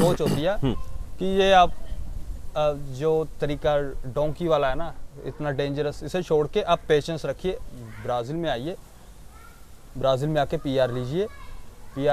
होती है कि ये आप जो तरीका डोंकी वाला है ना, इतना डेंजरस, इसे छोड़ के आप पेशेंस रखिए, ब्राज़ील में आइए, ब्राज़ील में आके PR लीजिए।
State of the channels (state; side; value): identical; both; correlation 1.00